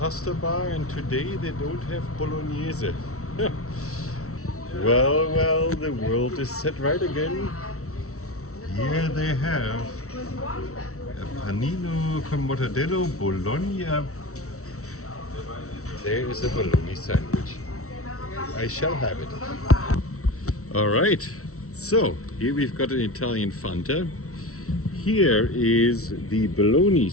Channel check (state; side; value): late; right; 0.64 ms